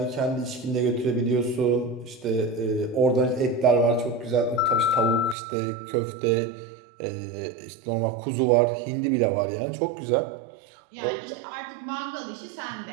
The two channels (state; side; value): drops out; left; at 5.4 s